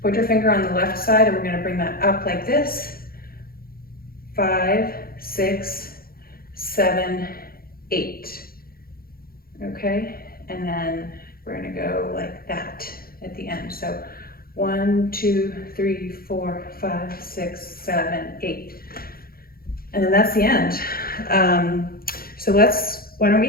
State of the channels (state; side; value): late; right; 0.43 ms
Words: finger on the left side, and we're gonna bring that up like this. 5, 6, 7, 8. Okay, and then we're gonna go like that at the end. So 1, 2, 3, 4, 5, 6, 7, 8. And then that's the end. So why don't we